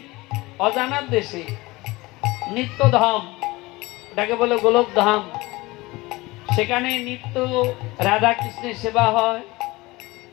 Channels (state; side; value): quieter; right; 21.3 dB